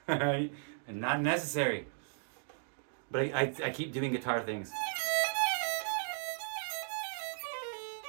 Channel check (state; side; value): silent; left; digital silence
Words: And not necessary. But I keep doing guitar things.